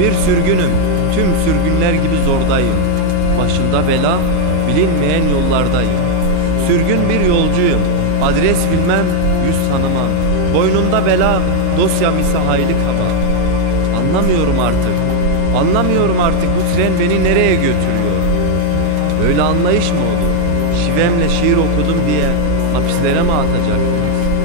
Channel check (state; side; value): different; both; correlation 0.01